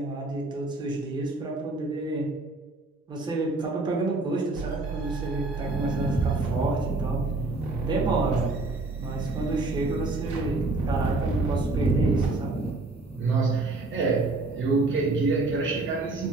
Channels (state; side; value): quieter; left; 3.1 dB